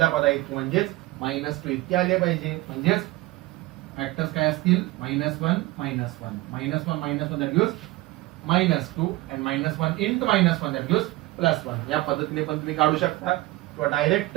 पदा इतकी म्हणजेच -2 इतकी आली पाहिजे. म्हणजेच फॅक्टर्स काय असतील -1 -1 that gives -2 and -1 into -1 that gives +1. या पद्धतीने पण तुम्ही काढू शकता किंवा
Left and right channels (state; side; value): quieter; left; 19.4 dB